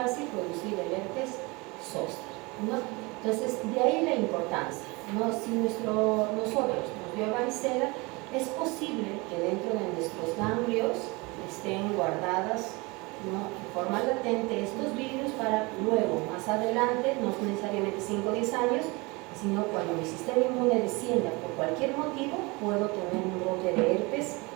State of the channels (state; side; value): quieter; left; 25.8 dB